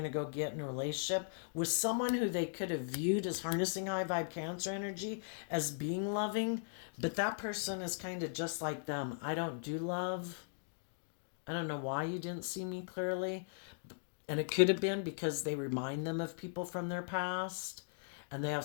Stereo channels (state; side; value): silent; right; digital silence